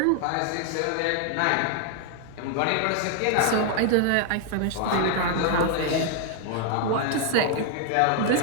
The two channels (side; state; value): both; different; correlation 0.00